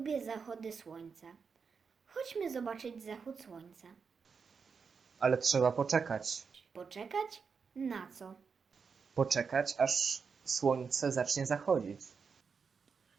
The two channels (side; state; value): left; quieter; 5.7 dB